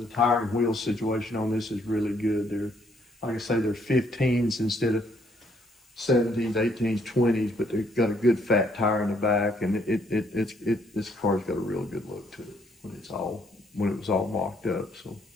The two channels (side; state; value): both; normal; correlation 0.68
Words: tire and wheel situation on this is really good. They're, like I say, they're 15s instead of 17s, 18s, 20s, but they've got a good fat tire in the back, and this car's got a real good look to it when it was all mocked up. So.